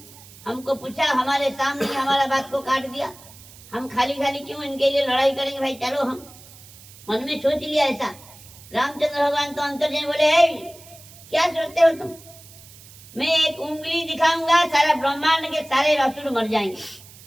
हमको पूछा, हमारे सामने हमारा बात को काट दिया, हम खाली क्यों इनके लिए लड़ाई करेंगे? भाई चलो, हम मन में सोच लिया ऐसा। रामचंद्र भगवान तो अंतर जैन बोले क्या सोचते हो तुम? मैं एक उंगली दिखाऊंगा, सारा ब्रह्मांड के सारे असुर मर जाएंगे।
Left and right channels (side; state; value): right; noise; hiss, 21 dB below the sound